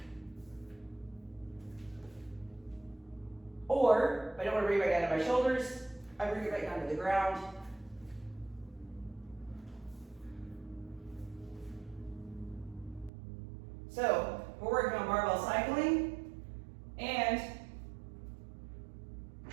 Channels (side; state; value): left; drops out; at 13.1 s